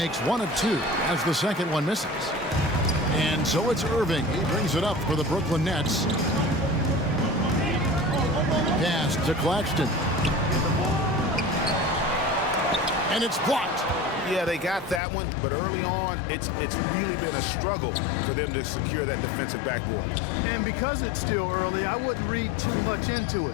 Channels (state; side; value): drops out; right; at 15.0 s